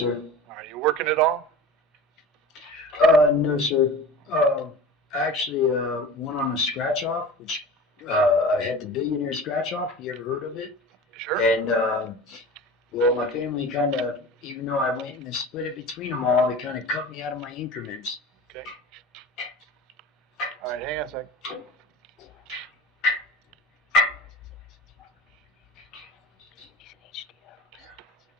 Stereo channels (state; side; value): normal; both; correlation 0.35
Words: Are you working at all? No, sir. Actually, went on a scratch off, which I had the billionaire scratch off. You ever heard of it? Sure. And well, my family kind of, even though I went and split it between them all, they kind of cut me out of my increments. Okay. All right, hang on a sec.